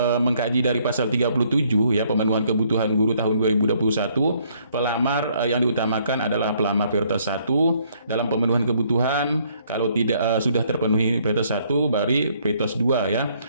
mengkaji dari pasal 37 ya, pemenuhan kebutuhan guru tahun 2021, pelamar yang diutamakan adalah pelamar prioritas 1 dalam pemenuhan kebutuhan. Kalau tidak sudah terpenuhi prioritas 1 baru prioritas 2 ya.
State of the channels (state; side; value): inverted; both; correlation -0.66